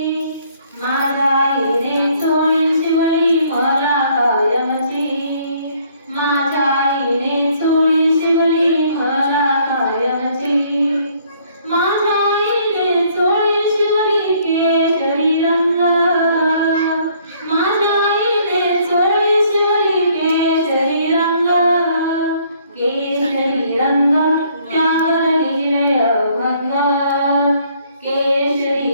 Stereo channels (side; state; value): both; inverted; correlation -0.63